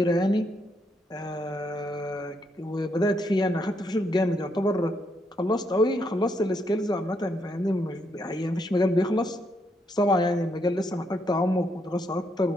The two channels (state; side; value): normal; both; correlation 0.77